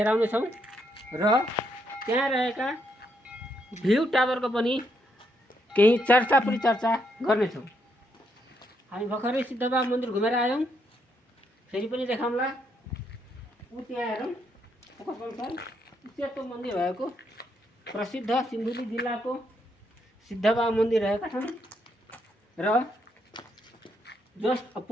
छौँ र त्यहाँ रहेका भ्यू टावरको पनि केही चर्चा गर्नेछौँ। हामी भर्खरै सिद्धबाबा मन्दिर घुमेर आयौँ, फेरि पनि देखाउँला। त्यहाँ हेरौँ, सेतो मन्दिर भएको प्रसिद्ध सिन्धुली जिल्लाको सिद्धबाबा मन्दिर रहेका छन् र जस्ट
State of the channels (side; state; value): both; normal; correlation 0.76